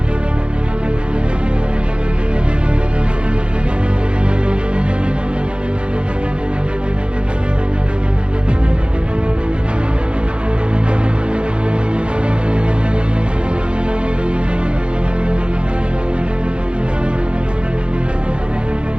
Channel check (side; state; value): left; late; 0.055 ms